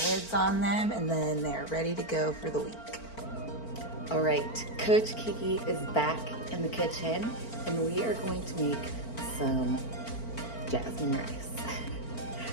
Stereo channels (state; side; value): late; right; 4.4 ms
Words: lids on them, and then they're ready to go for the week. All right, Coach Kiki is back in the kitchen, and we are going to make some jasmine rice.